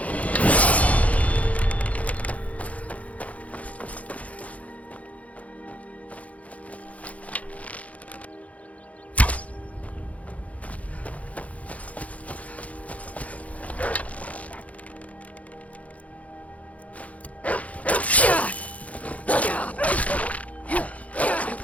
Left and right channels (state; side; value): late; right; 0.067 ms